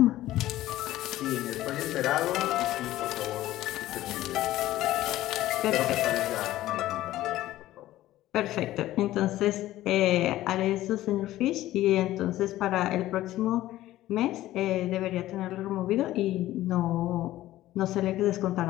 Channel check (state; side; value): quieter; right; 15.1 dB